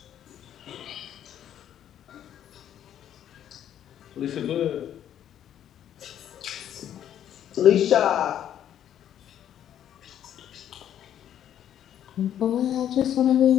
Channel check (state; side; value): quieter; right; 10.4 dB